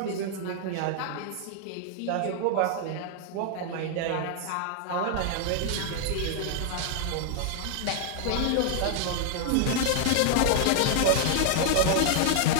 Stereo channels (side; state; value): both; different; correlation 0.00